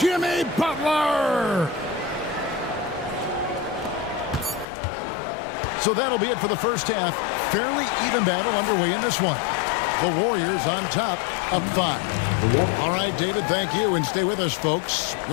Butler. So that'll be it for the first half. Fairly even battle underway in this one. The Warriors on top, up 5. All right, David, thank you, and stay with us, folks.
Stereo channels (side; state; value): right; drops out; at 4.7 s